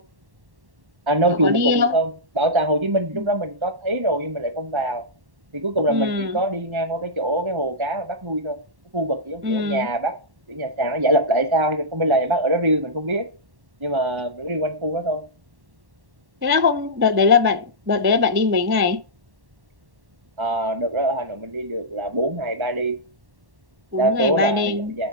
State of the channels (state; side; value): late; left; 1.1 ms